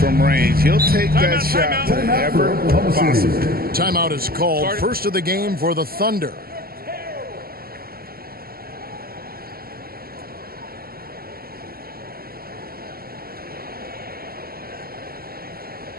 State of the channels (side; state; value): left; late; 0.44 ms